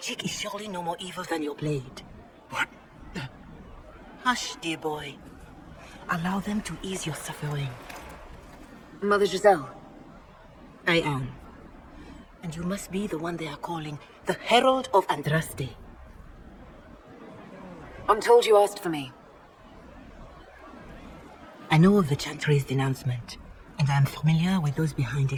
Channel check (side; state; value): both; identical; correlation 1.00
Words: is surely no more evil than your blade. What? Hush, dear boy. Allow them to ease your suffering. Mother Giselle. I am. And you must be the one they are calling the Herald of Andraste. I'm told you asked for me. I know of the Chantry's denouncement, and I am familiar with those behind